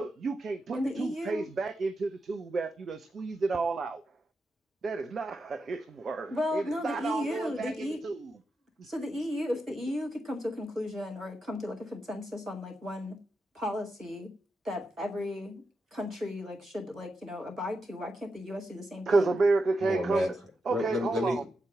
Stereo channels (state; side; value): normal; both; correlation 0.87